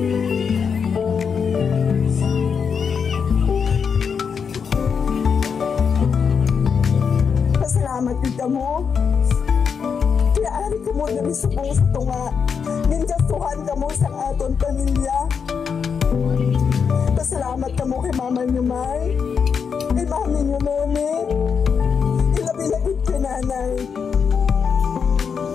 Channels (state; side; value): quieter; right; 6.4 dB